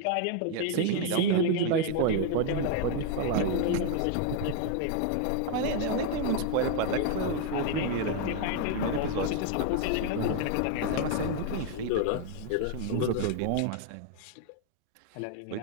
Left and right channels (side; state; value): both; different; correlation 0.00